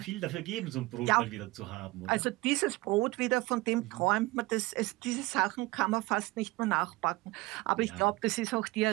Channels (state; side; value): quieter; left; 21.2 dB